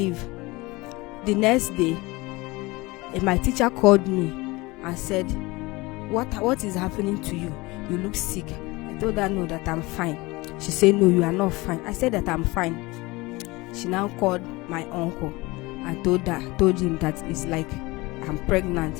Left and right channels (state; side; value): quieter; right; 22.6 dB